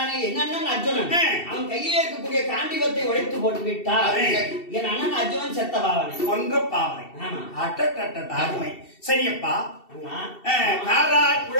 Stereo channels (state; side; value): late; right; 2.7 ms